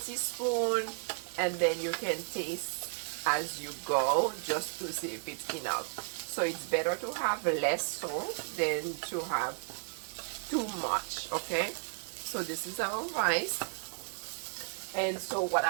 and then you can taste as you go just to see if it's enough. So it's better to have less salt than to have too much. Okay, so this is our rice. And so what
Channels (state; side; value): silent; left; 55 dB below the other